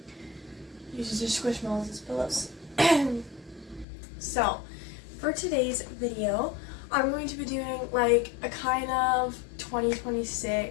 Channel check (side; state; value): right; drops out; at 3.9 s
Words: Uses her squishmallows as pillows. So, for today's video, I'm going to be doing like a kind of